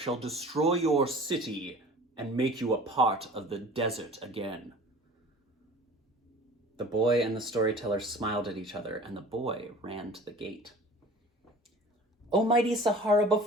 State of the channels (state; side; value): normal; both; correlation 0.44